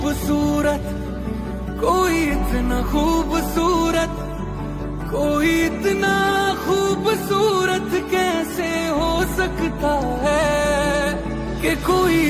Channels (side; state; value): both; identical; correlation 1.00